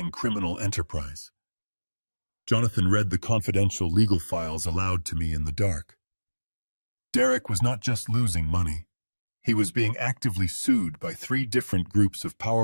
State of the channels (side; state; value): both; inverted; correlation -1.00